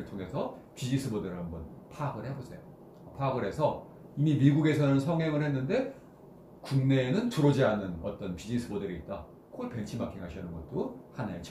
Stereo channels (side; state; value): both; identical; correlation 1.00